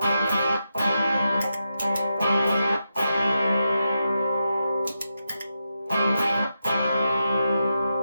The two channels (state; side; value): inverted; both; correlation -0.87